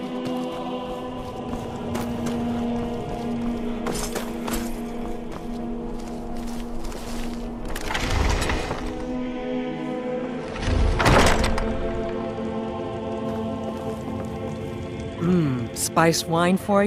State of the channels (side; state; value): both; identical; correlation 1.00